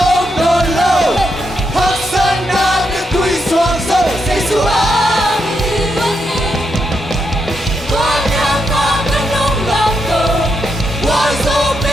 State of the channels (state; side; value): normal; both; correlation 0.81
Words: ôm còn lâu hắc sơn na như tuy xoang sâu say xuống con em con cánh nông lòng cầu qua dâu